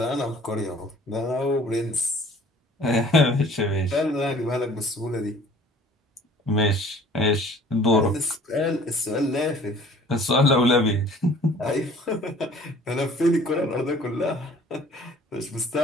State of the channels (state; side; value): normal; both; correlation 0.52